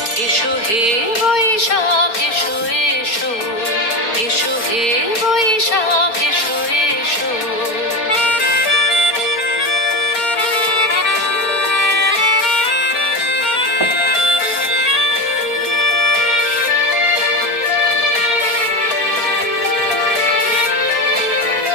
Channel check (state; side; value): late; right; 4.2 ms